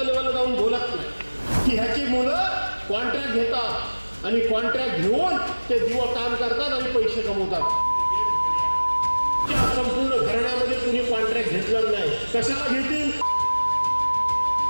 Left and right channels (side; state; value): both; inverted; correlation -1.00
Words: लेवलला जाऊन बोलत नाही की ह्याची मुलं कॉन्ट्रॅक्ट घेतात आणि कॉन्ट्रॅक्ट घेऊन ते दिवस काम करतात आणि पैसे कमवतात. संपूर्ण घराण्यामध्ये कुणी कॉन्ट्रॅक्ट घेतलं नाही. कशाला घेतील?